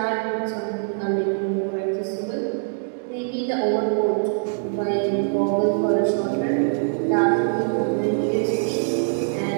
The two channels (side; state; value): left; silent; digital silence